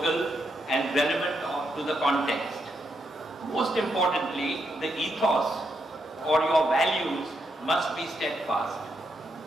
and relevant to the context. Most importantly, the ethos or your values must be steadfast.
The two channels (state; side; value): normal; both; correlation 0.80